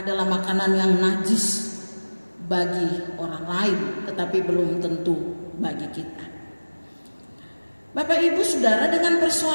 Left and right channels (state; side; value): inverted; both; correlation -1.00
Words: makanan yang najis bagi orang lain, tetapi belum tentu bagi kita. Bapak Ibu Saudara, dengan